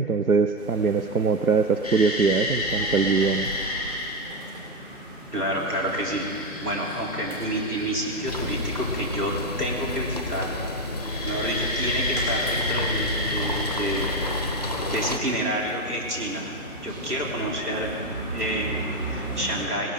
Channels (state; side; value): normal; both; correlation 0.10